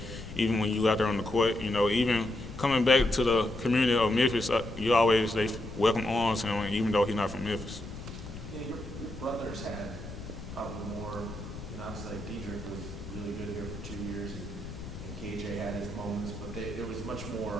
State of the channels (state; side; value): noise; left; rumble, 11 dB below the sound